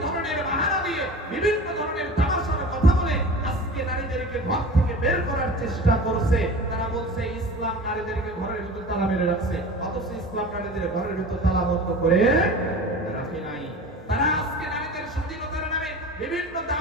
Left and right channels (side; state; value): both; normal; correlation 0.36